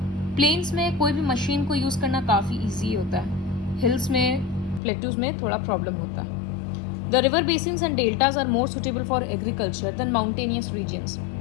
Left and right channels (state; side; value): drops out; right; at 4.8 s